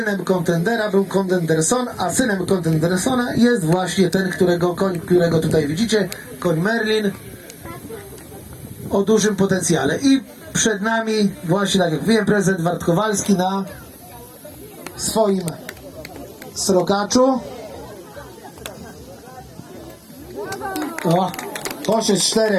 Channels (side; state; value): both; identical; correlation 1.00